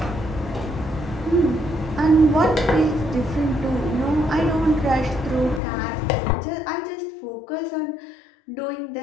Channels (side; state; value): right; drops out; at 5.6 s